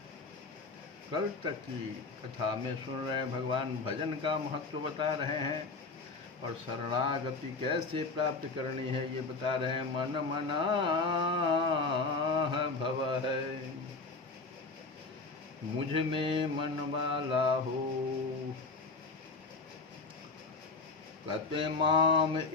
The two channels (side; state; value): right; quieter; 3.9 dB